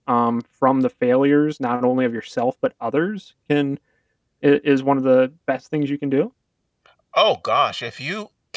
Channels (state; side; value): identical; both; correlation 1.00